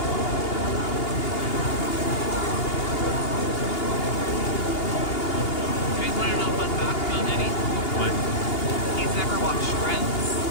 You guys want to know a fun fact about Eddie? What? He's never watched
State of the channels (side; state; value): right; late; 2.8 ms